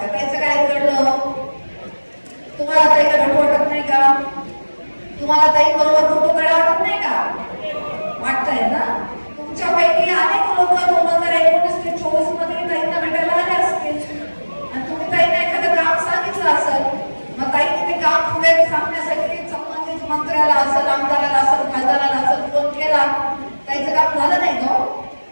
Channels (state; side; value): inverted; both; correlation -1.00